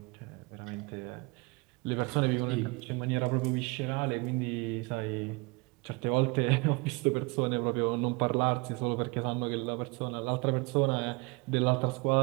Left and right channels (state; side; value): quieter; left; 27.1 dB